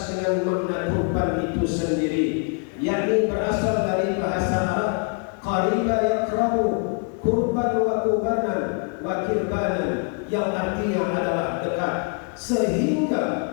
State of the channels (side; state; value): right; quieter; 39.8 dB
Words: dengan makna kurban itu sendiri, yakni berasal dari bahasa Arab qariba yakrabu, kurban wa kurbanan wa kirbanan, yang artinya adalah dekat. Sehingga